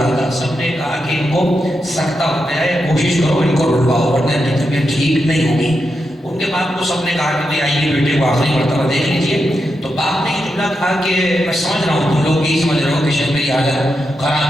تھا. سب نے کہا کہ ان کو سکتہ ہو گیا ہے، کوشش کرو ان کو رلواؤ ورنہ ان کی طبیعت ٹھیک نہیں ہوگی. ان کے باپ کو سب نے کہا کہ بھئی آئیے بیٹے کو آخری مرتبہ دیکھ لیجیے. تو باپ نے یہ جملہ کہا کہ میں سمجھ رہا ہوں تم لوگ یہی سمجھ رہے ہو کہ شاید میری حالت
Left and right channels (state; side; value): normal; both; correlation 0.86